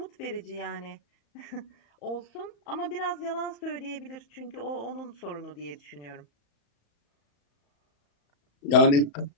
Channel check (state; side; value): late; right; 35 ms